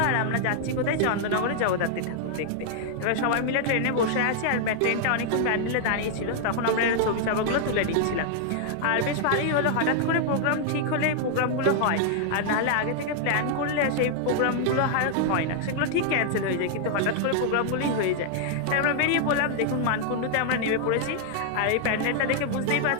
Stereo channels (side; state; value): both; different; correlation 0.00